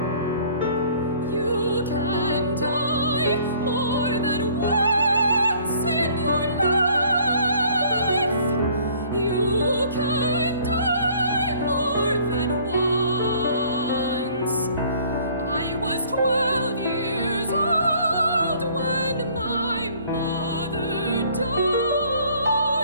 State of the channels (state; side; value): inverted; both; correlation -0.56